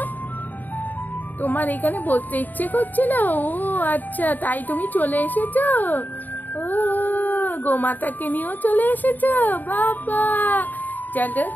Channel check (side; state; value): right; late; 0.086 ms